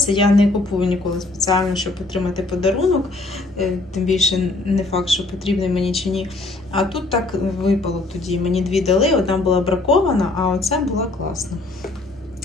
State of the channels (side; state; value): right; quieter; 3.1 dB